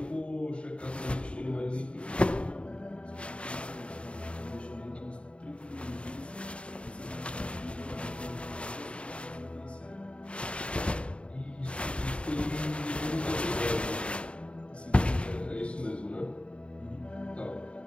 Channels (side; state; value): right; late; 0.058 ms